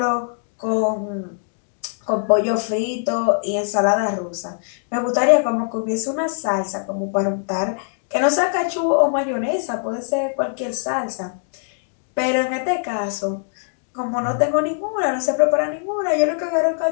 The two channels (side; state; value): right; silent; digital silence